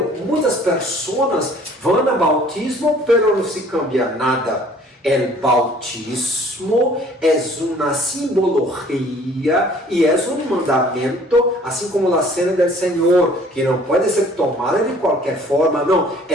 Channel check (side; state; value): both; normal; correlation 0.54